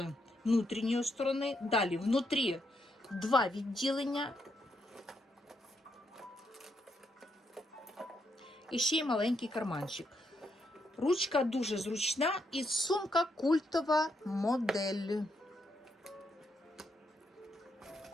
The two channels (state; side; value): normal; both; correlation 0.78